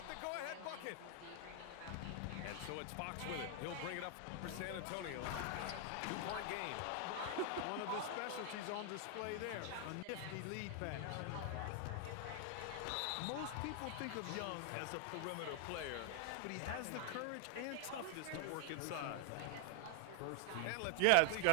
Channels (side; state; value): both; different; correlation 0.00